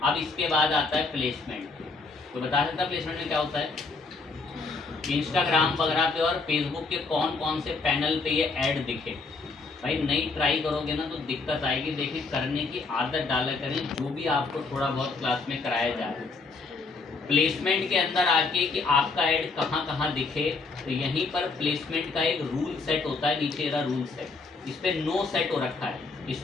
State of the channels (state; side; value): quieter; right; 4.0 dB